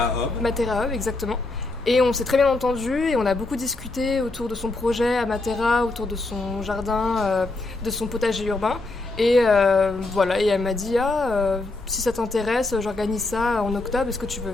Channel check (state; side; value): quieter; right; 3.1 dB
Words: Hub, exactement. Et on s'est très bien entendus et on a beaucoup discuté autour de son projet à Matera, autour de son jardin, de son potager urbain. Et voilà, et elle m'a dit si ça t'intéresse, j'organise ça en octobre, est-ce que tu veux